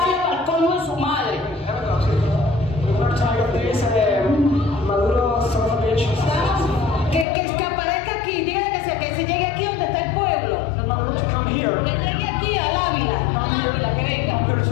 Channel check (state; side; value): drops out; right; at 7.2 s